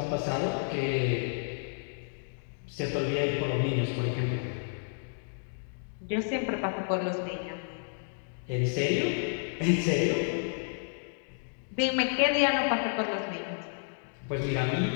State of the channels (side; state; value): right; silent; digital silence